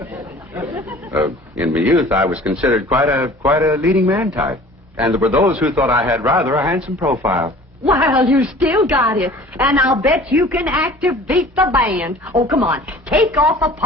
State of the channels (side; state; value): both; normal; correlation 0.46